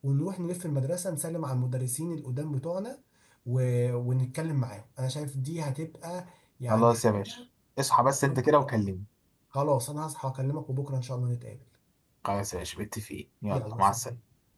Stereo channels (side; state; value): both; identical; correlation 1.00